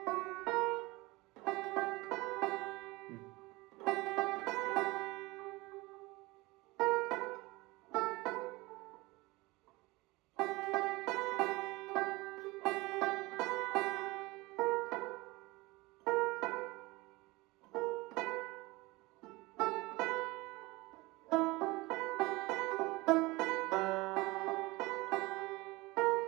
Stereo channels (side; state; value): left; quieter; 22.2 dB